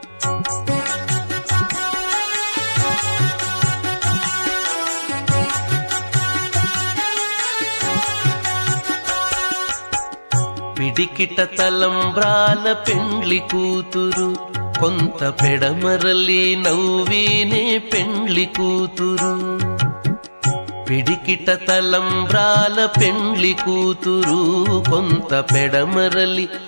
పిడికిట తలంబ్రాల పెండ్లి కూతురు కొంత పెడమరలి నవ్వీనే పెండ్లి కూతురు పిడికిట తలంబ్రాల పెండ్లి కూతురు కొంత పెడమరలి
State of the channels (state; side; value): inverted; both; correlation -1.00